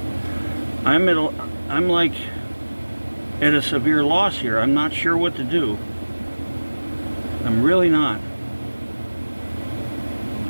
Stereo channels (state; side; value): inverted; both; correlation -1.00